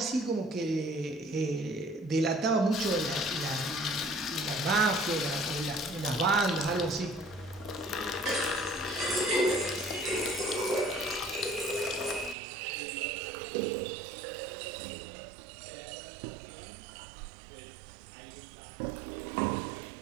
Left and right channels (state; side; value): drops out; left; at 12.4 s